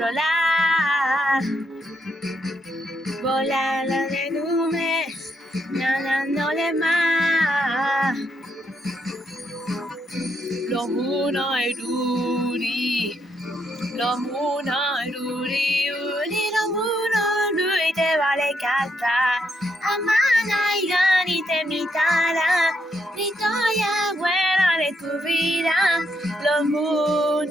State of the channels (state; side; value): normal; both; correlation 0.77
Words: Volando de nubes, nadándole más. Los monos Ruri, los monos Ruri, los monos Ruri te vale cantar. Amana y Gani te imitará, ni historia buena de tu vida. Los